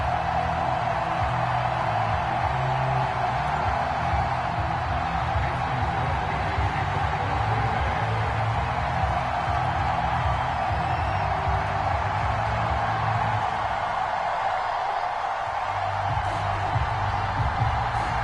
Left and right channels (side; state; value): both; identical; correlation 1.00